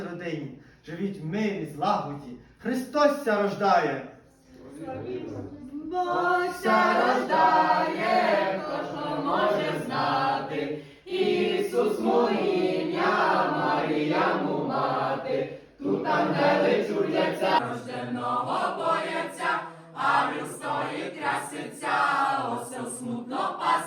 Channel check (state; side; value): identical; both; correlation 1.00